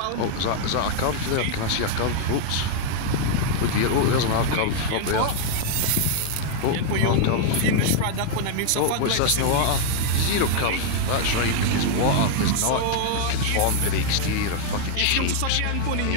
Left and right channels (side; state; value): both; different; correlation -0.01